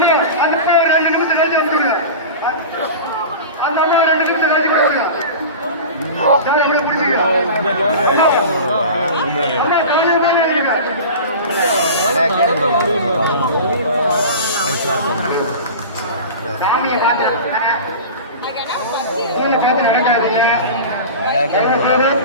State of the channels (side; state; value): both; inverted; correlation -0.32